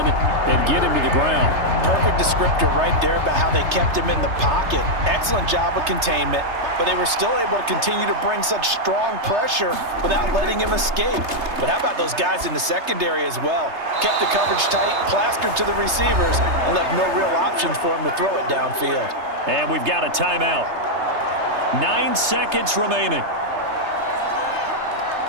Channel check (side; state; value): left; late; 3.3 ms